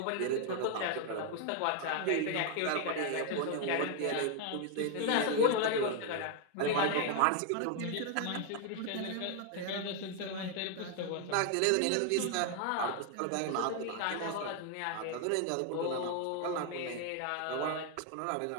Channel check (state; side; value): different; both; correlation 0.01